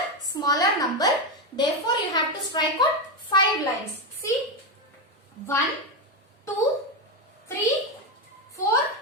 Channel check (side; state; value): both; normal; correlation 0.09